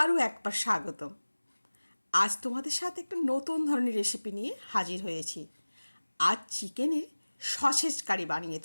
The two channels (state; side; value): inverted; both; correlation -1.00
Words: একবার স্বাগতম। আজ তোমাদের সাথে একটা নতুন ধরনের রেসিপি নিয়ে হাজির হয়েছি। আজ চিকেনের সসেজ কারি বানিয়ে